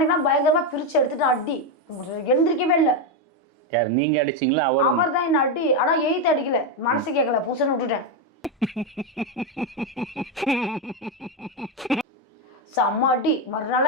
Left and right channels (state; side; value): normal; both; correlation 0.07